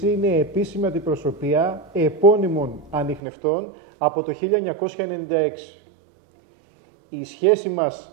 είναι επίσημη αντιπροσωπεία επώνυμων ανιχνευτών από το 1996. Η σχέση μας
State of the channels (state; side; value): drops out; left; at 3.2 s